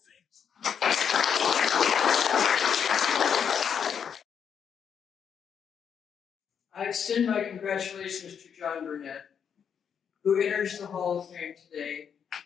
I extend my congratulations to John Burnett, who enters the Hall of Fame today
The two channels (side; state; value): right; quieter; 7.6 dB